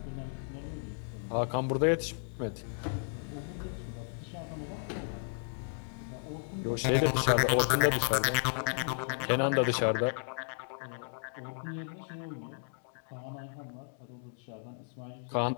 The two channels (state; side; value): silent; right; digital silence